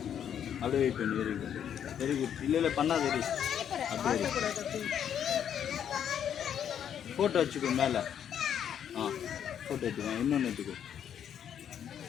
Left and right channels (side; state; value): right; quieter; 9.1 dB